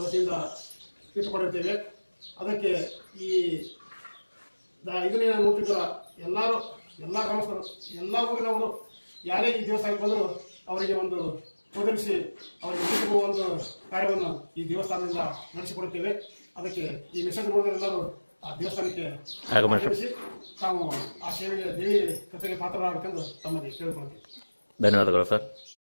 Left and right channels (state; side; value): inverted; both; correlation -1.00